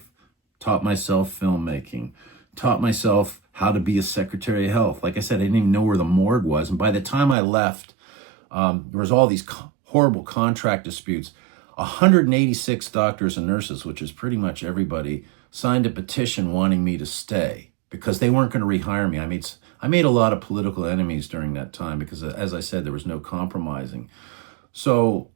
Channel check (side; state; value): left; drops out; at 7.4 s